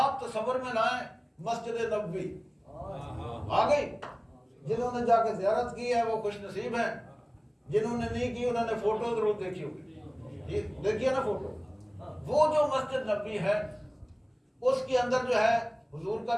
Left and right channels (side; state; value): both; identical; correlation 1.00